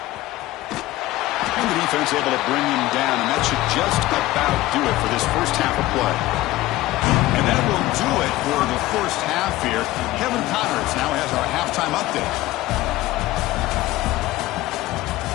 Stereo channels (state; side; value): quieter; right; 17.2 dB